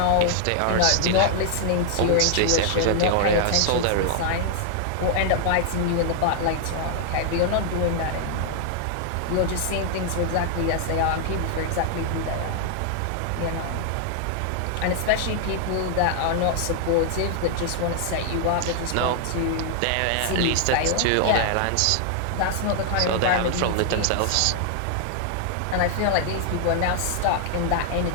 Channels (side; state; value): both; different; correlation 0.00